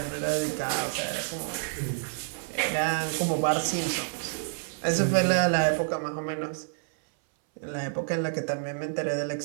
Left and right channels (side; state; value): left; silent; 59 dB below the other